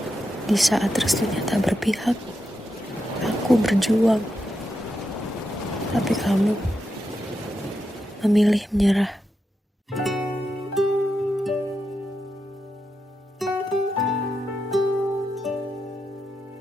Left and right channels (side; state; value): both; normal; correlation 0.86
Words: Di saat restunya tak berpihak, aku berjuang. Tapi kamu memilih menyerah.